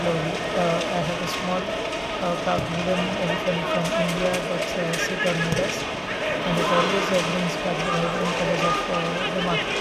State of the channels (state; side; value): identical; both; correlation 1.00